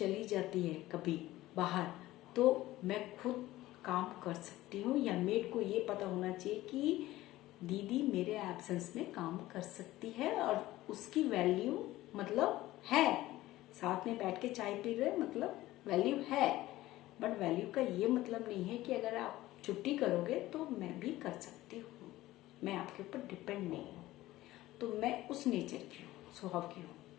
जाती है कभी बाहर, तो मैं खुद काम कर सकती हूँ, या मेड को ये पता होना चाहिए कि दीदी मेरे एब्सेंस में काम कर सकती है, और उसकी वैल्यू मतलब है, साथ में बैठ के चाय पी रहे मतलब वैल्यू है। बट वैल्यू का ये मतलब नहीं है कि अगर आप छुट्टी करोगे तो मैं भी कर सकती हूँ, मैं आपके ऊपर डिपेंड नहीं हूँ। तो मैं उस नेचर की हूँ, स्वभाव की हूँ।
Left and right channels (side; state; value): right; quieter; 16.6 dB